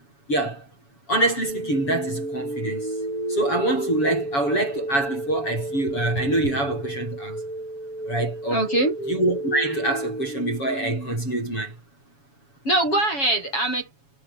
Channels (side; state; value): right; late; 7.2 ms